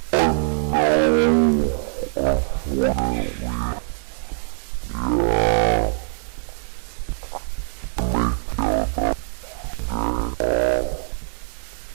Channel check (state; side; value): silent; left; digital silence